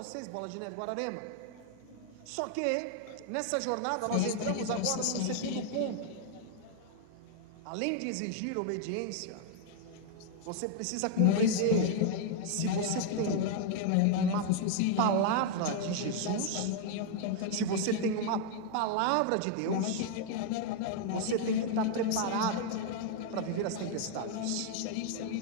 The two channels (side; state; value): both; different; correlation 0.00